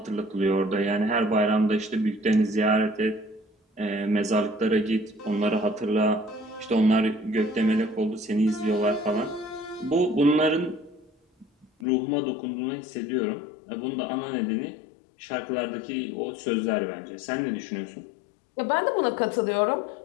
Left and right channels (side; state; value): right; drops out; at 11.7 s